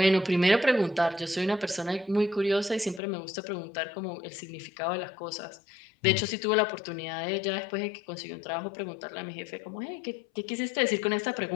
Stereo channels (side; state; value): right; drops out; at 3.0 s